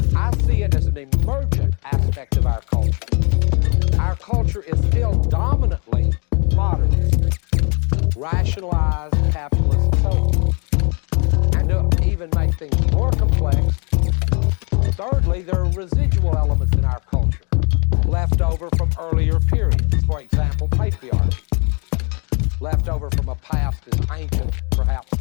I see it as an emergent aspect of our culture. Our culture is still dominantly modernist, rationalized, capitalist, and so on. And to even make things more complex, thirdly, there are residual elements in our culture left over from earlier periods. For example, patriarchy, left over from a past as ancient, perhaps,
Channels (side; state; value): right; quieter; 35.2 dB